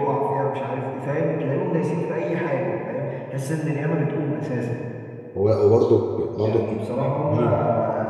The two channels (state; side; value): identical; both; correlation 1.00